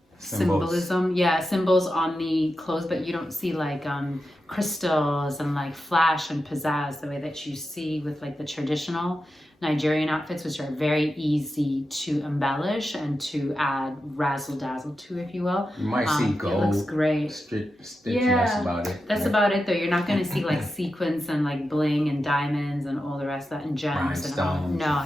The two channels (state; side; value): normal; both; correlation 0.90